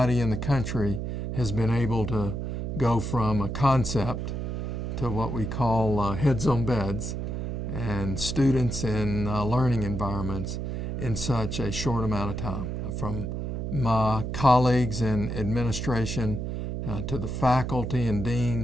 in the country has been able to go from a concept to what we call heads on beds and students in learning environments in such a short amount of time. From my colleagues in administration to the faculty and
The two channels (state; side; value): noise; right; hum, 3 dB below the sound